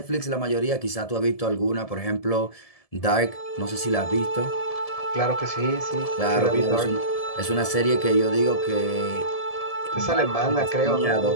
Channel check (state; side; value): late; right; 1.7 ms